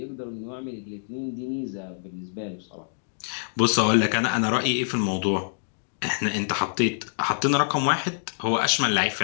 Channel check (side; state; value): right; silent; digital silence